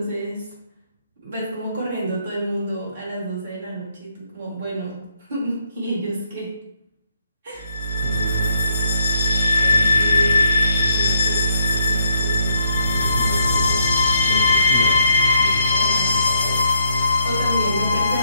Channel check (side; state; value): both; inverted; correlation -0.72